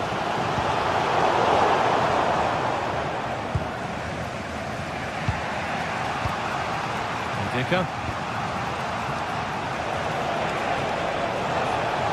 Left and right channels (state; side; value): identical; both; correlation 1.00